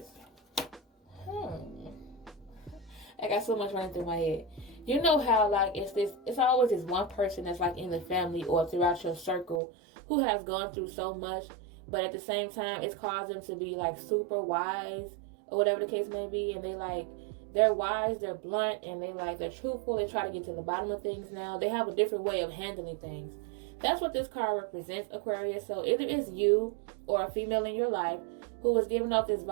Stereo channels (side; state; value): left; drops out; at 9.6 s